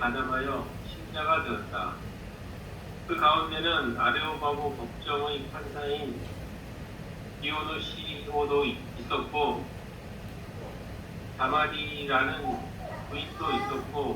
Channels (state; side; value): identical; both; correlation 1.00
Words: 신자가 되었다. 그 가운데는 아레오바고 법정의 판사인 디오노시오도 있었고 다마리라는 부인도